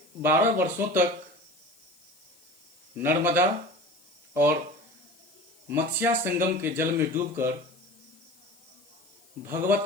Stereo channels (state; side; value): noise; left; hiss, 30 dB below the sound